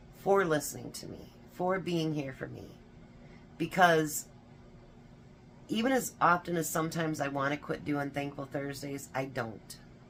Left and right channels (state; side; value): identical; both; correlation 1.00